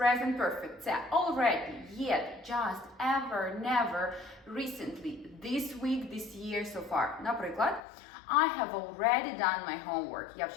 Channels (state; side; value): drops out; right; at 7.8 s